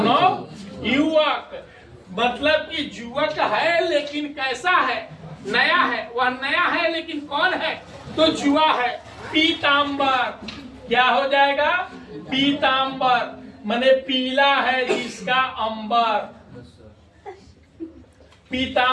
मतलब कि युवक है लेकिन कैसा है? नया है। वह नया है लेकिन कौन है? तो जुआ है। पीतांबर, क्या हो जाएगा? पीतांबर माने पीला है जिसका अंबर,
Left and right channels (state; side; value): identical; both; correlation 1.00